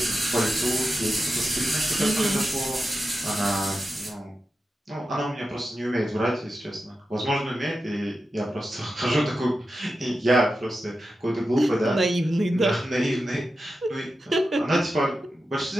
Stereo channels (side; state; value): both; normal; correlation 0.91